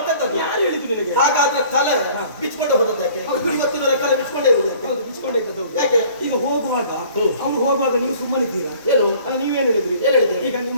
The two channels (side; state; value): both; inverted; correlation -0.52